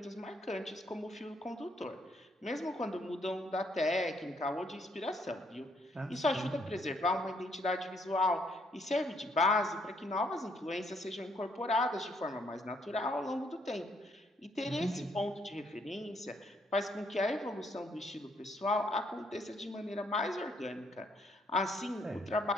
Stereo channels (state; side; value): normal; both; correlation 0.70